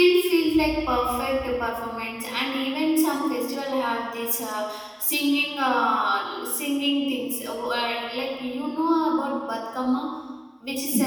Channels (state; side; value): identical; both; correlation 1.00